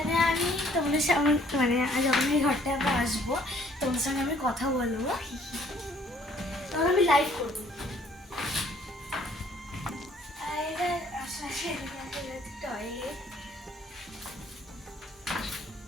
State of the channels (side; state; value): both; normal; correlation 0.60